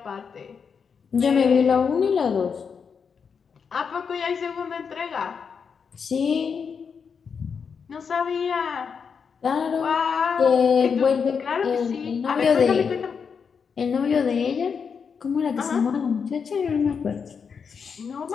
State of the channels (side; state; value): right; quieter; 6.2 dB